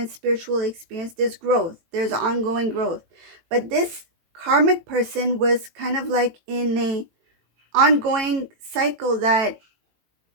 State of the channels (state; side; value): late; left; 18 ms